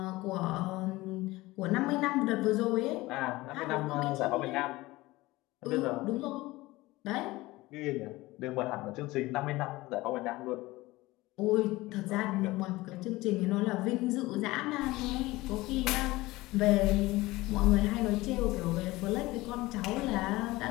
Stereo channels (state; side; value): quieter; right; 19.6 dB